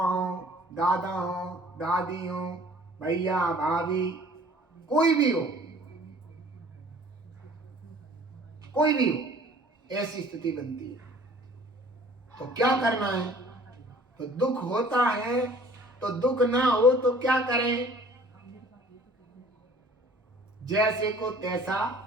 दादा हो, दादी हो, भैया भाभी, कोई भी हो, ऐसी स्थिति बनती है। तो क्या करना है? तो दुख होता है तो दुख ना हो तो क्या करें? जैसे को तैसा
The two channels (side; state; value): both; normal; correlation 0.52